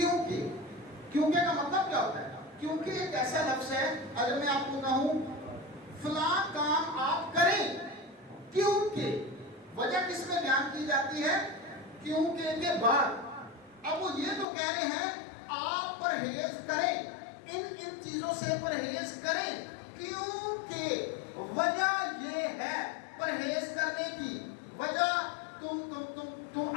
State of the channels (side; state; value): right; drops out; at 14.5 s